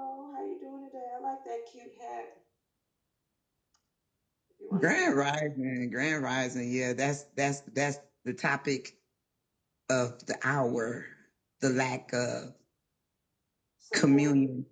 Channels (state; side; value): identical; both; correlation 1.00